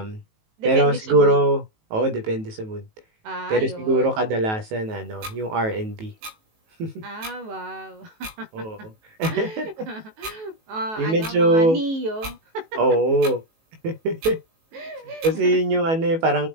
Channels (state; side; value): late; left; 18 ms